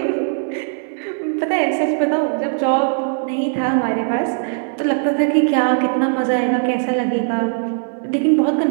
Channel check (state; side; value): silent; left; 63 dB below the other